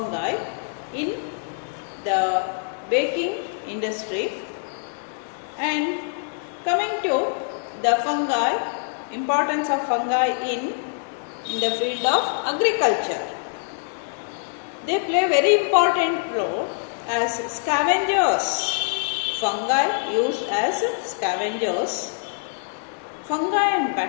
in the baking industry. And coming to the fungi, importance of fungi in the field of agriculture. They play a very important role as scavengers. Fungi used as scavengers. Fungi and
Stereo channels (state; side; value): silent; right; digital silence